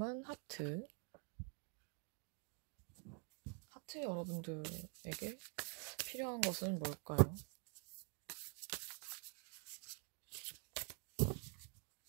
하트. 하트 여러분들에게 필요한 것은 뭘까요?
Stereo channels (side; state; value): left; quieter; 34.5 dB